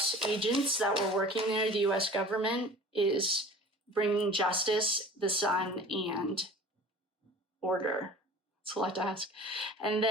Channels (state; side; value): normal; both; correlation 0.43